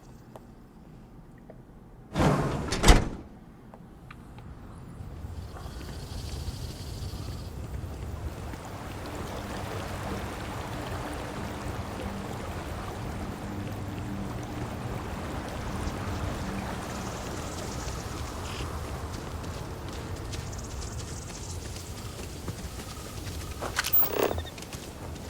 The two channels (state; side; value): identical; both; correlation 1.00